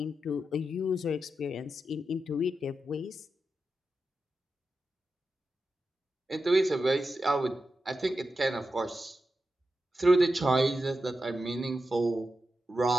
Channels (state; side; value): normal; both; correlation 0.89